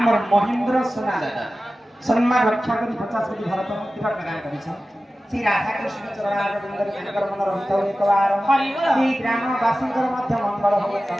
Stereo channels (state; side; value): normal; both; correlation 0.95